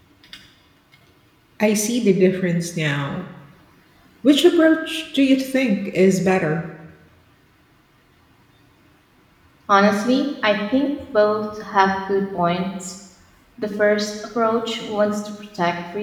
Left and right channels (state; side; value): identical; both; correlation 1.00